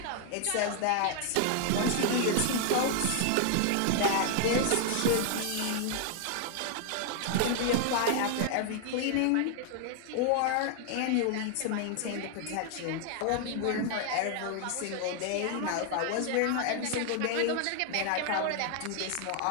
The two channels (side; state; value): both; different; correlation 0.00